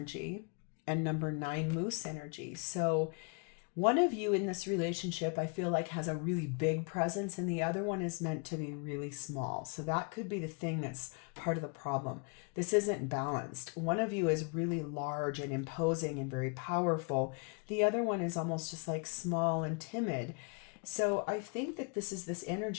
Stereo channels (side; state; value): right; quieter; 37.2 dB